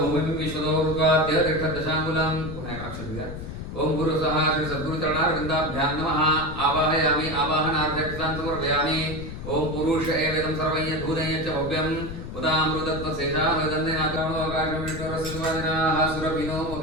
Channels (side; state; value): left; noise; rumble, 8 dB below the sound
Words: भूमिं विश्वतो ऋत्वाद्य तिष्ठदशाङ्गुलं अक्षरं ओम गुरुस्वाहा श्री सद्गुरुचरणारविन्दाभ्यां नमः आवाहयामि आवाहनार्थे अक्षतान् समर्पयामि ओम पुरुष एवेदं सर्वं यद्धूतं यच्च भव्यं उदामृतत्वशेषामदन्यनाकामोकाशमेश्वरसिद्धादिनाः सुरभिनो